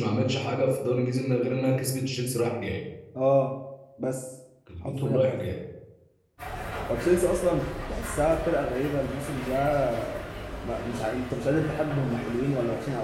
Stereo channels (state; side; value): identical; both; correlation 1.00